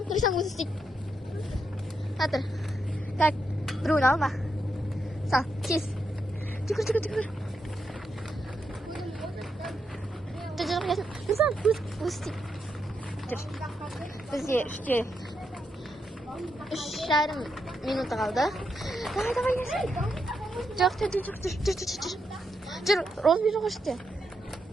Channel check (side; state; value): both; normal; correlation 0.82